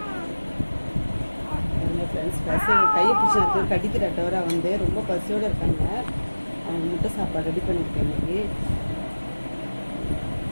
ஃப்ரெண்ட்ஸ், பசை கையை பிடிச்சி கடிக்கிற டவரா வந்து ரொம்ப பசியோடு இருக்காங்க. அவங்க முட்டை சாப்பாடு ரெடி பண்ணியிருக்கேன் இன்றைக்கி.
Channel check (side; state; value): both; inverted; correlation -1.00